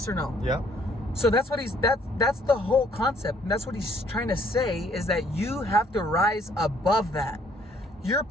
or no? Yeah. So that's what that's the whole concept. And that's what he's trying to say, is that you have to rise above that. You're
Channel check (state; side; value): normal; both; correlation 0.63